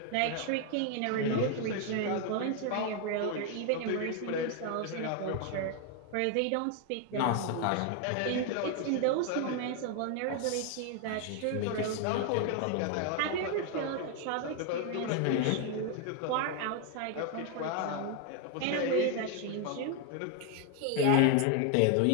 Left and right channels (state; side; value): different; both; correlation 0.00